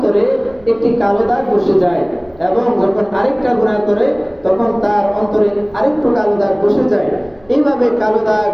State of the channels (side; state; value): right; noise; hum, 29 dB below the sound